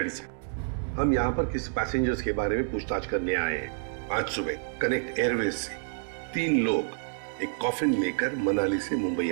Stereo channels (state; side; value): silent; left; digital silence